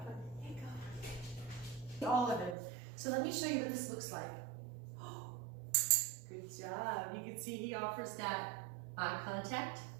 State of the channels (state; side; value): drops out; left; at 2.6 s